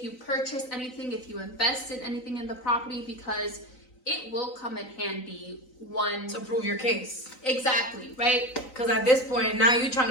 you purchase anything, if you invest in anything in the property, because it will come in handy To prove your case. Exactly, right? Because at this point, now you're trying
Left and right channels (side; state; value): right; late; 3.9 ms